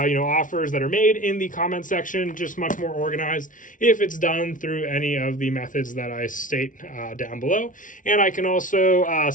that are made in the comment section, just much more organized if it's done through any of the methods that I state down below. And I can also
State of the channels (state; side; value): late; right; 0.38 ms